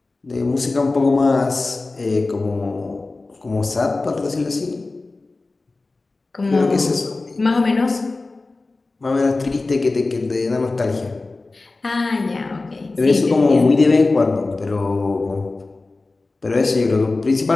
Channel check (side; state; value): right; quieter; 3.4 dB